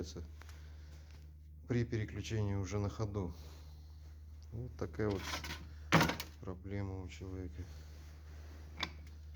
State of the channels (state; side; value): identical; both; correlation 1.00